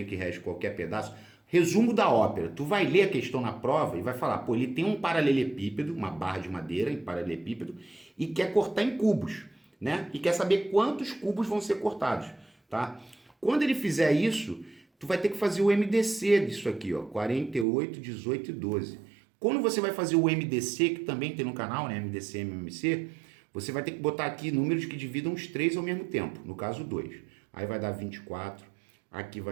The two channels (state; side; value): drops out; left; at 17.7 s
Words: que reste qualquer pedaço. Resumo da ópera. Tu vai ler a questão na prova e vai falar, pô, ele tem um paralelepípedo, uma barra de madeira em paralelepípedo, e quer cortar em cubos, né? E quer saber quantos cubos vão ser cortados, tá? Quando ele fizer isso, tu vai ter que fazer o MDC disso aqui, ó, 48, 18 e 12. Quando você vai fazer o MDC, que também tem no canal, né, MDC, MMC, você vai ter que botar aqui números que dividam os três ao mesmo tempo, no caso 2. Aí vai dar 24, aqui